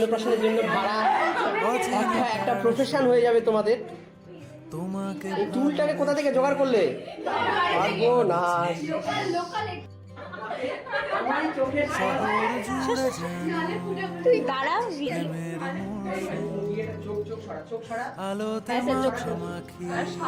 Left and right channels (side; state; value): both; identical; correlation 1.00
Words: জন্য ভাড়া একটা প্রফেশন হয়ে যাবে তোমাদের। তোমাকে এই টুলটাকে কোথা থেকে জোগাড় করলে? পারবো না। তুই দাঁড়া। আলোতে মাখামাখি